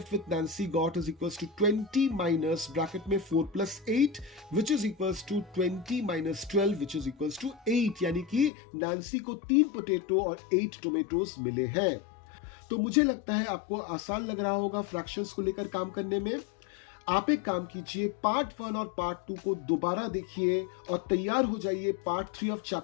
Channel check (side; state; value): right; drops out; at 8.5 s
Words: with Nancy got is equals to 20 minus bracket में 4 + 8 which is equals to 20 minus 12 which is equals to 8, यानी कि नैन्सी को 3 पोटैटो और 8 टोमेटोज मिले हैं। तो मुझे लगता है आपको आसान लग रहा होगा फ्रैक्शंस को लेकर काम करने में। आप एक काम कीजिए, पार्ट 1 और पार्ट 2 को दोबारा देखिए और तैयार हो जाइए पार्ट 3 ऑफ